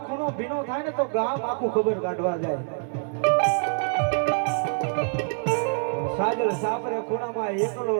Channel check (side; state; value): left; silent; 59 dB below the other